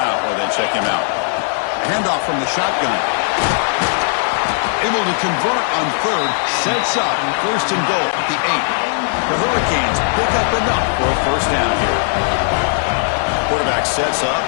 or then check him out. A handoff from the shotgun. Able to convert on third. Sets up first and goal at the 8. The Hurricanes pick up enough for a first down here. Quarterback sets up,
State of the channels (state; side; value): silent; right; digital silence